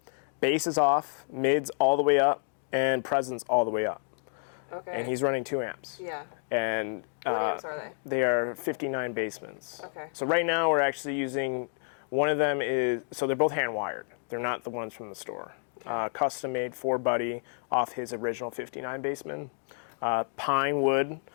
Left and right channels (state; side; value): silent; right; 55 dB below the other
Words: bass is off, mids all the way up, and presence all the way up. Okay. And he's running 2 amps. Yeah. And what amps are they? They are 59 basements. Okay. So right now we're actually using, one of them so they're both hand wired. They're not the ones from the store. Okay. Custom made for Buddy off his original 59 baseman. Pine wood.